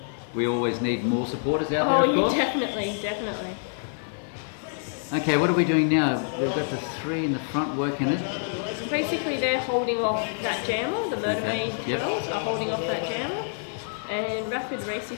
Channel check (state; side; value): silent; right; digital silence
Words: We always need more supporters out Oh, there, of yeah, course. definitely. Okay, what are we doing now? We've got the 3 in the front working it. Basically, they're holding off that jammer. The Murder Maid Yep. girls are holding off that jammer, and Rapid